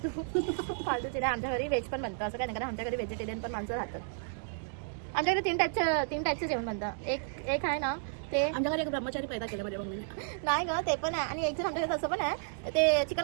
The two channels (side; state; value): left; silent; digital silence